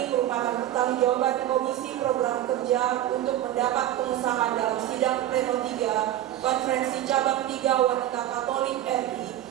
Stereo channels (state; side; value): quieter; left; 12.7 dB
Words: merupakan pertanggungjawaban Komisi Program Kerja untuk mendapat pengesahan dalam sidang pleno 3 Konferensi Cabang 3 Wanita Katolik RI